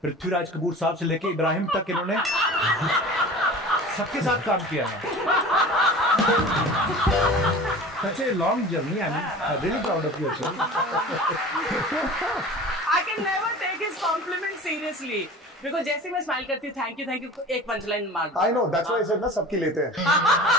पृथ्वीराज कपूर साहब से लेके इब्राहिम तक इन्होंने सबके साथ काम किया है। Such a long journey. I'm really proud of you. I can never take his compliment seriously because जैसे मैं स्माइल करती हूँ थैंक यू एक पंचलाइन मार दो। I know, that's why I said ना सबकी लेते हैं।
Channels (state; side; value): normal; both; correlation 0.38